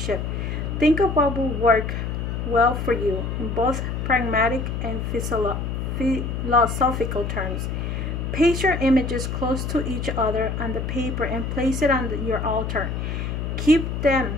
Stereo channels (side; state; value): left; noise; hum, 3 dB below the sound